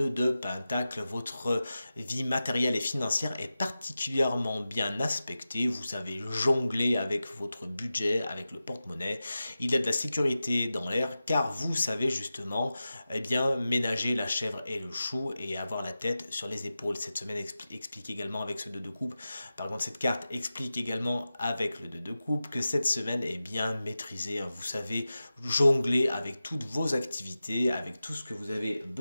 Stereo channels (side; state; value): both; inverted; correlation -0.94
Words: de Pentacle. Votre vie matérielle et financière est particulièrement bien aspectée. Vous savez jongler avec votre budget, avec le porte-monnaie. Il y a de la sécurité dans l'air car vous savez justement ménager la chèvre et le chou et avoir la tête sur les épaules. Cette semaine explique également avec ce 2 de coupe. Par contre, cette carte explique également avec le 2 de coupe que cette semaine est bien maîtrisée. Vous savez jongler avec toutes vos activités, avec tout ce que vous avez